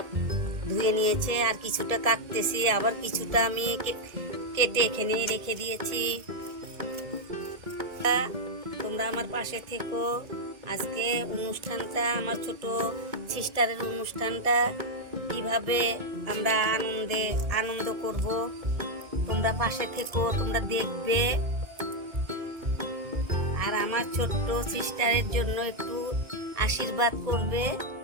ধুয়ে নিয়েছে, আর কিছুটা কাটতেছি, আবার কিছুটা আমি কেটে এখানে রেখে দিয়েছি। তোমরা আমার পাশে থেকো। আজকে অনুষ্ঠানটা, আমার ছোট সিস্টারের অনুষ্ঠানটা কিভাবে আমরা আনন্দ করব, তোমরা পাশে থেকো, তোমরা দেখবে। আর আমার ছোট্ট সিস্টারের জন্য একটু আশীর্বাদ করবে।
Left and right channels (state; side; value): late; left; 1.7 ms